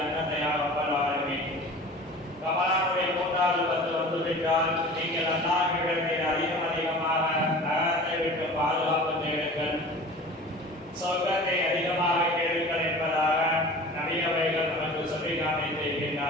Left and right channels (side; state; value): both; normal; correlation 0.39